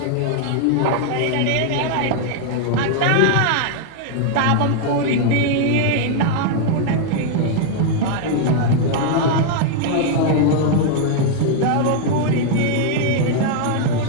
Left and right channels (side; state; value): both; different; correlation 0.00